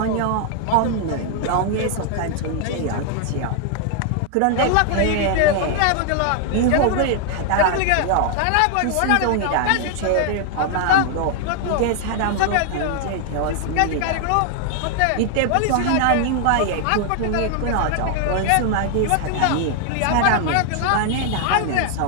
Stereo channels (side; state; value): both; different; correlation 0.00